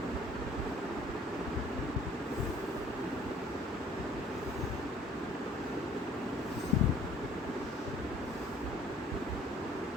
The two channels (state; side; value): normal; both; correlation 0.55